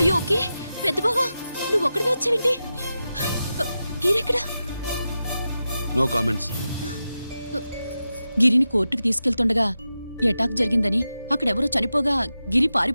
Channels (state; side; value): inverted; both; correlation -0.91